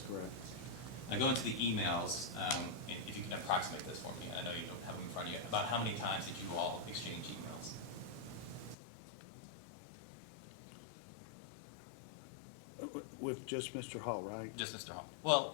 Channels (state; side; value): drops out; right; at 8.8 s